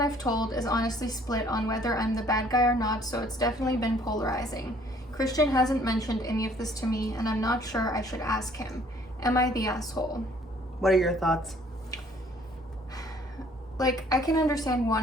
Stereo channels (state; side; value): normal; both; correlation 0.59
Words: told is honestly split on whether I'm the bad guy or not, so it's definitely been polarizing. Christian hasn't mentioned any of this to me, and I'm not sure I should ask him. Am I the asshole? What are your thoughts? Like, I can understand